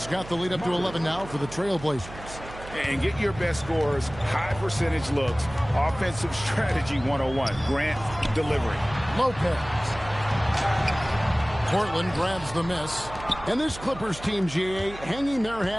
got the lead up to 11 now for the Trail Blazers. And get your best scores, high percentage looks, offensive strategy 101. Grant delivering. Lopez. Portland grabs the miss. And this Clippers team, GA, hanging their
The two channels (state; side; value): noise; right; hum, 14 dB below the sound